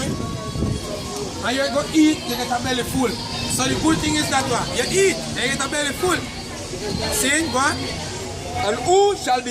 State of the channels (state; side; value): identical; both; correlation 1.00